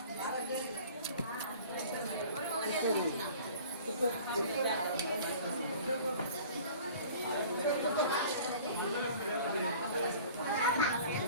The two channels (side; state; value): both; inverted; correlation -0.46